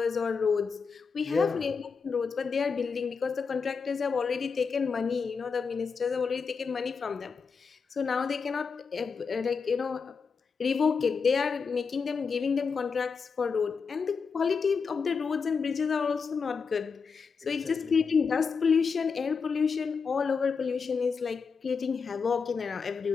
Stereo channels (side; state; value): right; quieter; 5.4 dB